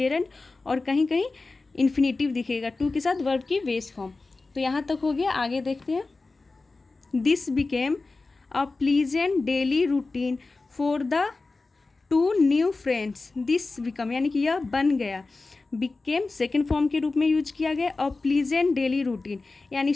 और कहीं कहीं इन्फिनिटिव दिखेगा टू के साथ वर्ब की बेस फॉर्म। तो यहाँ तक हो गया, आगे देखते हैं। This became a pleasant daily routine for the two new friends. This become यानी कि यह बन गया, बिकेम सेकेंड फॉर्म के रूप में यूज किया गया, अ प्लीजेंट डेली रूटीन यानी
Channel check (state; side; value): quieter; right; 3.6 dB